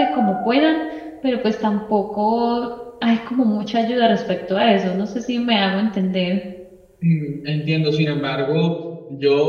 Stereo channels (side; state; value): both; identical; correlation 1.00